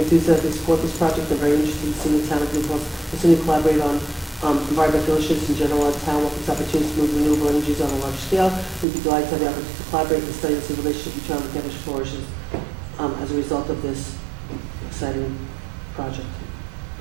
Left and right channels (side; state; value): left; drops out; at 8.8 s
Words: support this project and are very interested in seeing the town of New Paltz continue to collaborate on environmental issues in general. Our town welcomes opportunities to move renewable energies on a large scale. We'd be delighted to have the opportunity to collaborate and study the relationship between the campus flourishes as a result of this exciting project.